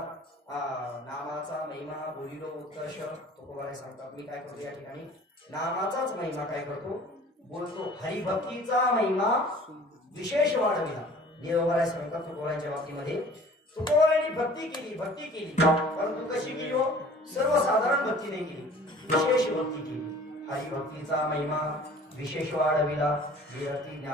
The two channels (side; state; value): both; normal; correlation 0.48